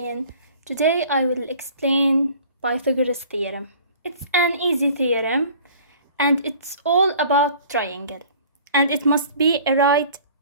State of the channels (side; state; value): both; inverted; correlation -0.49